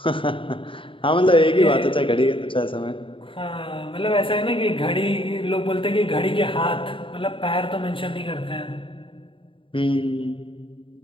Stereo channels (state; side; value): late; right; 0.25 ms